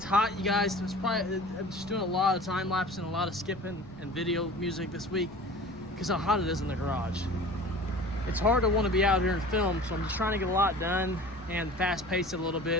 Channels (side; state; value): left; noise; rumble, 22 dB below the sound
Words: hot, you guys. I'm just doing a lot of time lapse and a lot of skipping and video music this week because how hot it is in the garage. It's hard to want to be out here and film, so I'm just trying to get a lot done and fast pace it a little